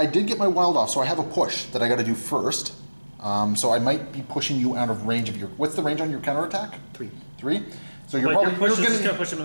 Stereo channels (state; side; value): inverted; both; correlation -1.00